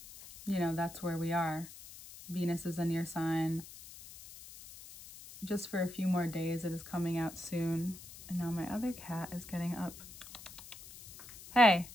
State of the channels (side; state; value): left; noise; hiss, 16 dB below the sound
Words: you know, that's where we are. Venus is in your sign just for a few more days. It is coming out soon. And now my other cat is getting up. Hey.